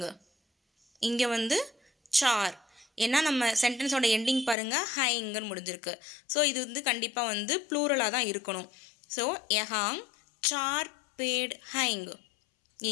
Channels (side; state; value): right; drops out; at 4.5 s